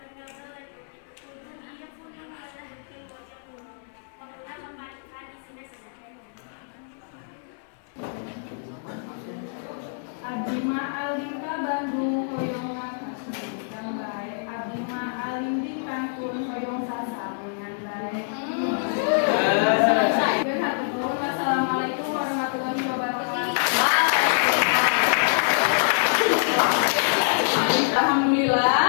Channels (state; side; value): silent; right; digital silence